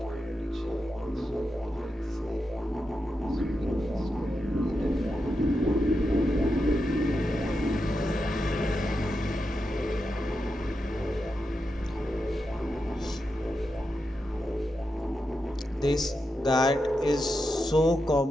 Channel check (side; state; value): both; normal; correlation 0.87